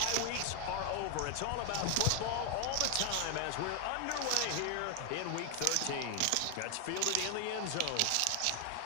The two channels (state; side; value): different; both; correlation 0.00